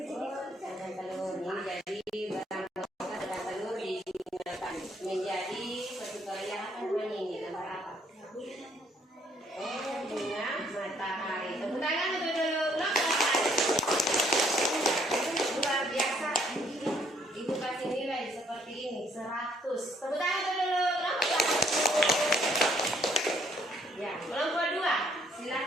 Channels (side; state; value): both; normal; correlation 0.66